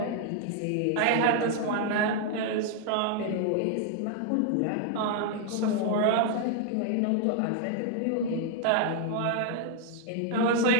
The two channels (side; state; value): both; different; correlation 0.00